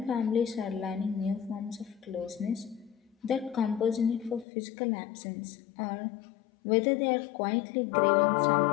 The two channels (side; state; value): right; drops out; at 4.5 s